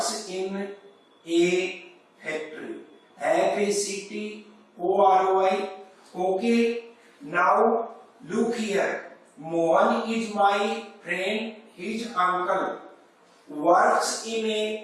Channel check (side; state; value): both; identical; correlation 1.00